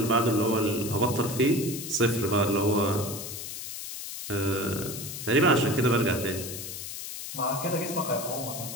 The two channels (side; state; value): left; noise; hiss, 8 dB below the sound